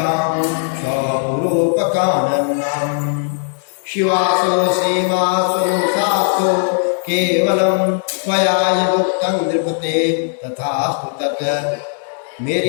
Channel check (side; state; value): right; silent; digital silence